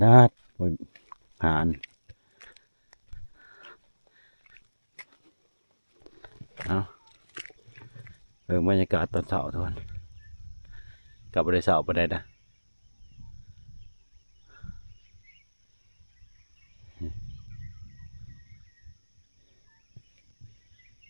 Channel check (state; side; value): inverted; both; correlation -1.00